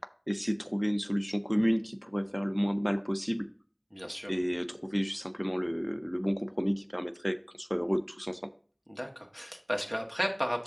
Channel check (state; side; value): identical; both; correlation 1.00